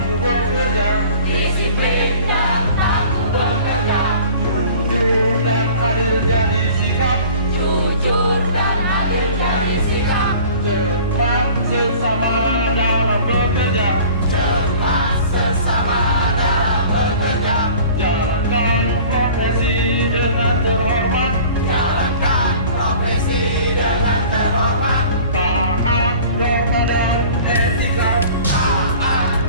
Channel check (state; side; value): inverted; both; correlation -0.45